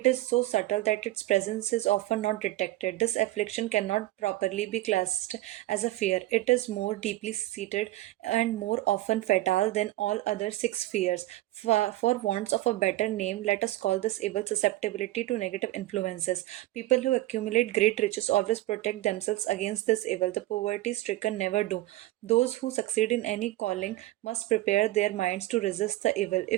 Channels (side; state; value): left; quieter; 16.6 dB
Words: is so subtle that its presence is often not detected. This affliction cannot properly be classed as a fear. It is more deeply seated and more often fatal than all other six fears. For want of a better name, let us call this evil susceptibility to negative influences. People who accumulate great riches always protect themselves against this evil. The poverty stricken never do. Those who succeed in any calling must prepare their minds to resist the evil.